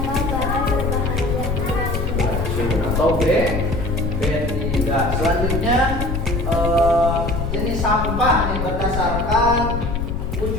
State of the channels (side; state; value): left; noise; rumble, 2 dB below the sound